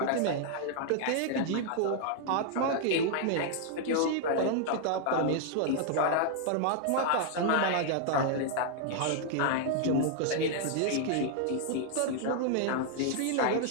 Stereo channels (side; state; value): both; different; correlation 0.00